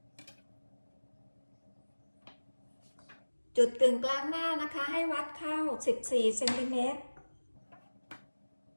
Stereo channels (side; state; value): both; inverted; correlation -1.00